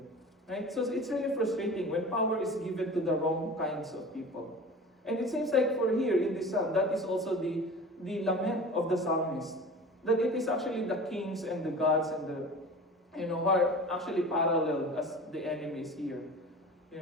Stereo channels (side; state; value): both; normal; correlation 0.37